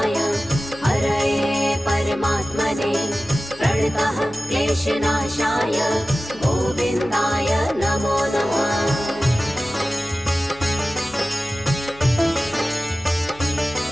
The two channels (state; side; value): noise; left; hum, 24 dB below the sound